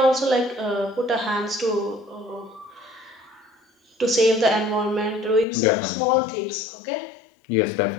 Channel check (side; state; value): right; drops out; at 5.5 s